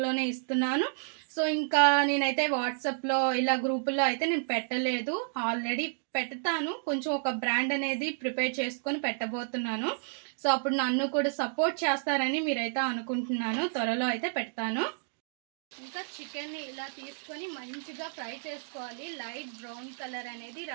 ఇస్తున్నాను. సో ఇంకా నేనైతే వాట్సాప్లో ఇలా గ్రూపుల్లో అయితే నేను పెట్టలేదు. ఆల్రెడీ పెడతాను. కొంచెం ఒక బ్రాండ్ అనేది ప్రిపేర్ చేసుకొని పెట్టబోతున్నాను. సో అప్పుడు నన్ను కూడా సపోర్ట్ చేస్తారని మీరైతే అనుకుంటున్నాను. త్వరలో అయితే పెడతాను. ఇంకా చికెన్ ని ఇలా తీసుకొని మంచిగా ఫ్రై చేసుకోవాలి. లైట్ బ్రౌన్ కలర్ అనేది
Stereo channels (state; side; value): silent; left; digital silence